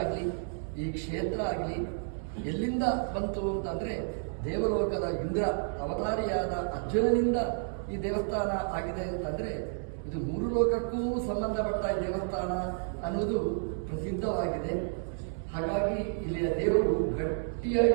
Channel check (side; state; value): left; silent; 57 dB below the other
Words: ಈ ಕ್ಷೇತ್ರ ಆಗಲಿ ಎಲ್ಲಿಂದ ಬಂತು ಅಂತಂದರೆ ದೇವಲೋಕದ ಇಂದ್ರ ಅವತಾರಿಯಾದ ಅರ್ಜುನನಿಂದ ಈ ದೇವಸ್ಥಾನ ಆಗಿದೆ ಅಂತಂದರೆ ಇದು ಮೂರು ಲೋಕಕ್ಕೂ ಸಂಬಂಧಪಟ್ಟ ದೇವಸ್ಥಾನ ಅನ್ನೋದು ಪ್ರಸಿದ್ಧವಾಗಿದೆ. ಹಾಗಾಗಿ ಇಲ್ಲಿಯ ದೇವರು